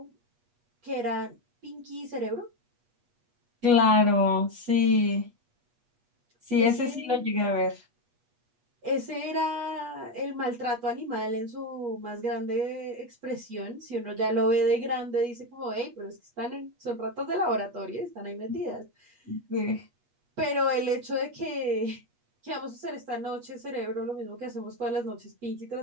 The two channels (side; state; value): left; late; 8.3 ms